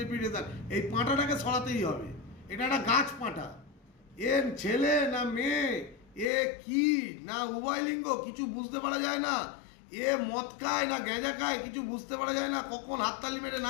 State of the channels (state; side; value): drops out; right; at 6.3 s